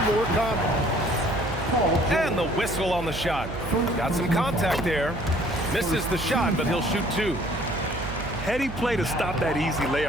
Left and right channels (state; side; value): noise; right; hum, 9 dB below the sound